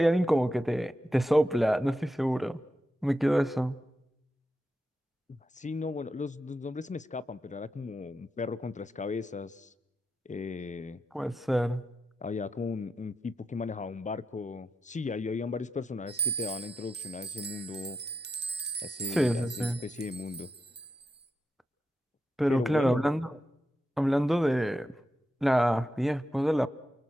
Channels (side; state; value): both; normal; correlation 0.87